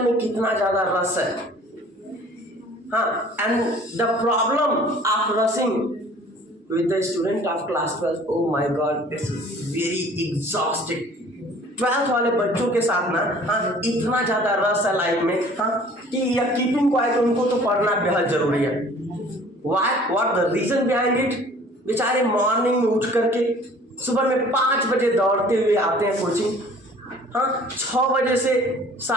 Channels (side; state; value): both; normal; correlation 0.50